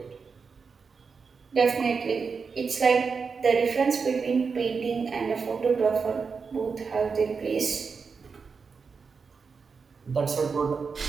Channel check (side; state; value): left; quieter; 5.3 dB